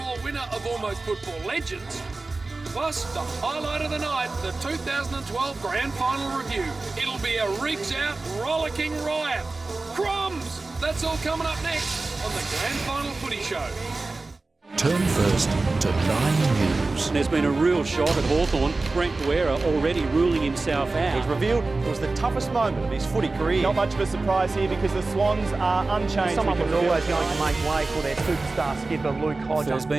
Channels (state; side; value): quieter; left; 3.4 dB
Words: winner of Almost Football Legends. Plus, the highlight of the night, the 2012 Grand Final Review. It'll be a rigs-out, rollicking riot. Crumbs! That's all coming up next on the Grand Final Footy Show. Turn first to 9 News. There's been a real shot at Hawthorn. Brent Guerra already ruling himself out. He's revealed it was the toughest moment of his footy career. Not much of a surprise here because the Swans are unchanged. Someone was always going to make way for their superstar skipper, Luke Hodge. There's